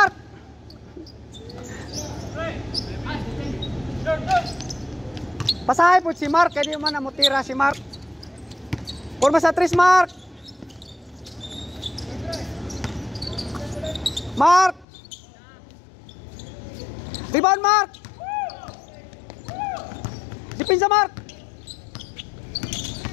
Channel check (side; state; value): right; drops out; at 14.9 s